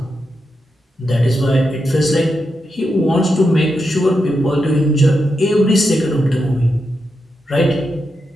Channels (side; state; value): both; normal; correlation 0.86